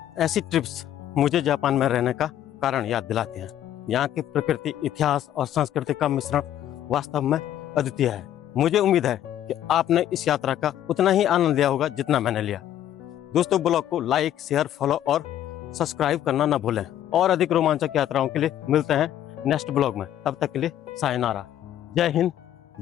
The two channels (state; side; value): quieter; right; 11.6 dB